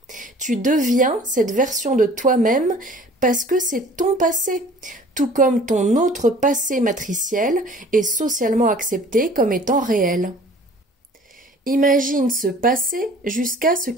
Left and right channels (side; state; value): both; normal; correlation 0.49